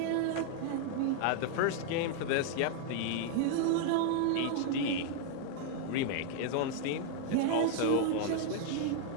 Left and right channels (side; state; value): both; different; correlation 0.00